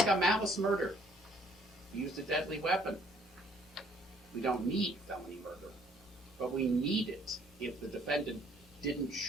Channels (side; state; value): both; normal; correlation 0.62